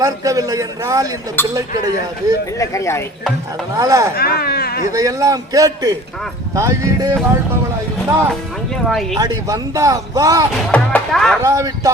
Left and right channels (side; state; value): both; normal; correlation 0.46